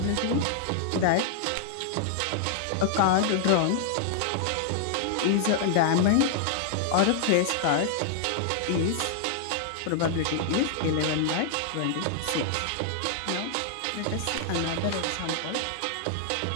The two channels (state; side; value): different; both; correlation -0.01